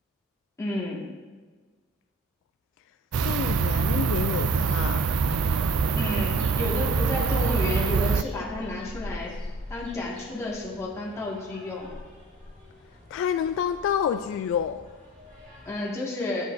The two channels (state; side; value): normal; both; correlation 0.49